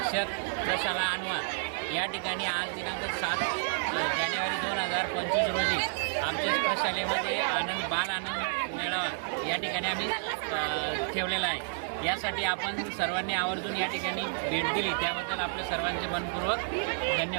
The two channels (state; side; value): silent; left; 56 dB below the other